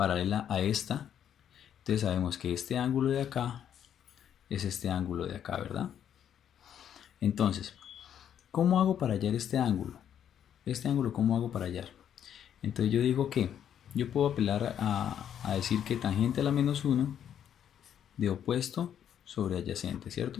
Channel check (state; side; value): quieter; right; 9.5 dB